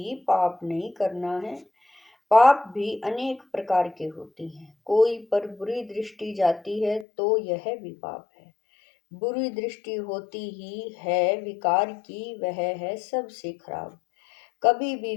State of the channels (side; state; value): right; drops out; at 7.1 s